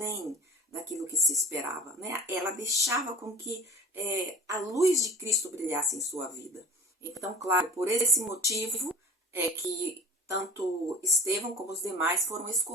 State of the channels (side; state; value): both; normal; correlation 0.37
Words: daquilo que se esperava, né? Ela deixava com que a luz de Cristo brilhasse em sua vida. Então, claro, por esse motivo é que tanto Estevão como os demais foram